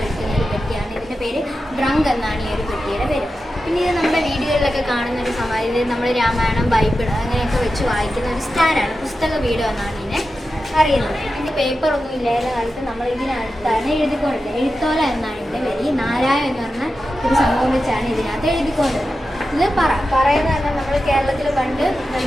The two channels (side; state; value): both; normal; correlation 0.91